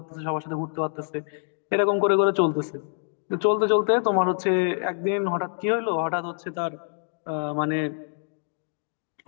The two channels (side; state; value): right; silent; digital silence